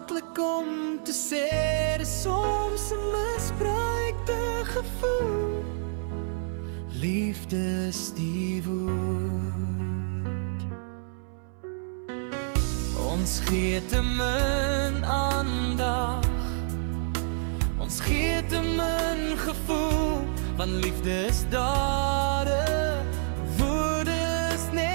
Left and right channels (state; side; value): silent; left; 59 dB below the other